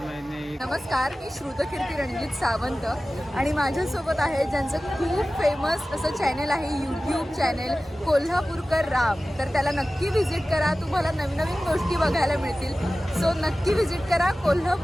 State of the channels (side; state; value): both; normal; correlation 0.96